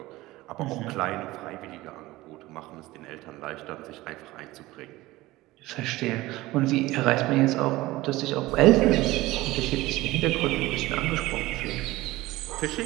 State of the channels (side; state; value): left; quieter; 18.6 dB